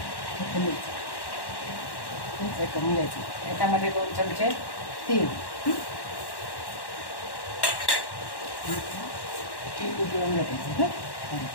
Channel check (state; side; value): late; right; 1.1 ms